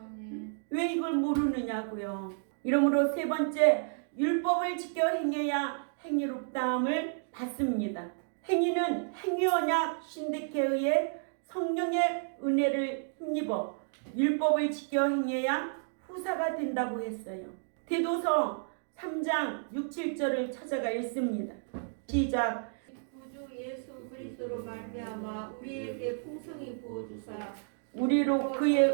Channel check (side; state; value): left; silent; digital silence